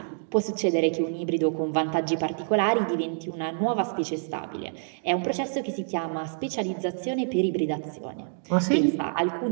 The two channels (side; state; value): left; silent; digital silence